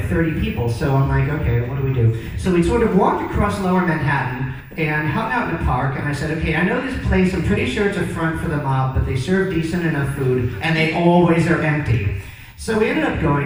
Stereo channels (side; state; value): both; identical; correlation 1.00